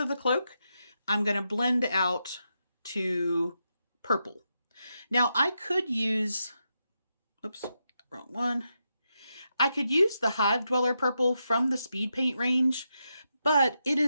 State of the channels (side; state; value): both; inverted; correlation -0.85